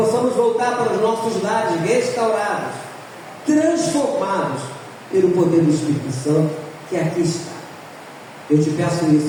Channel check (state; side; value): identical; both; correlation 1.00